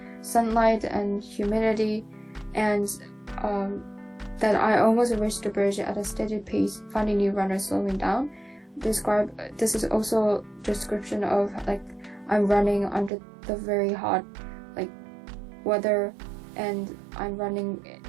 sunlight and humidity, and that I almost reached the bridge at a steady pace, finding new runners slowing down. This is also a description of like I'm running under the very hot like weather, and I'm running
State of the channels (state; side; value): drops out; left; at 13.1 s